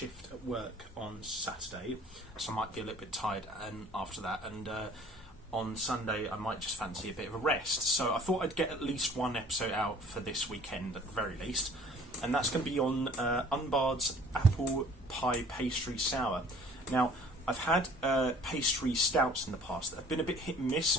at work on Saturday, so I might be a little bit tired after that, and on Sunday I might just fancy a bit of a rest. So I thought I'd get at least one episode out for this weekend at the very least, and that's going to be on Unbarred's Apple Pie Pastry Sour. Now, I've had pastry stouts in the past that have been a bit hit and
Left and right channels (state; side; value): normal; both; correlation 0.52